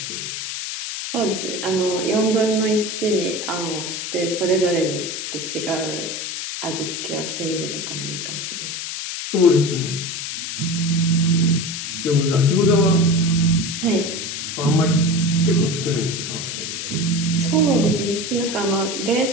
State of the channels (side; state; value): left; noise; hiss, 5 dB below the sound